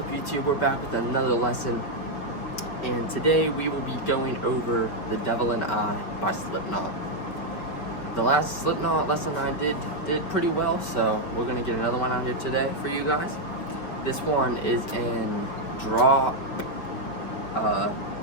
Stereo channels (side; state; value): right; late; 5.1 ms